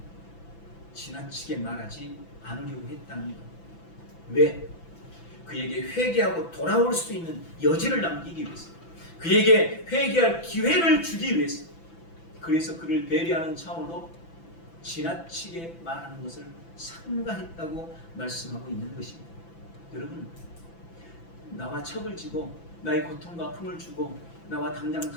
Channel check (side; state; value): right; late; 6.0 ms